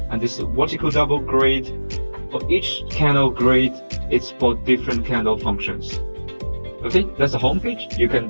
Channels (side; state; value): both; inverted; correlation -1.00